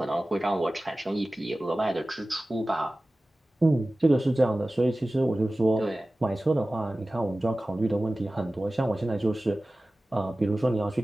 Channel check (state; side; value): normal; both; correlation 0.97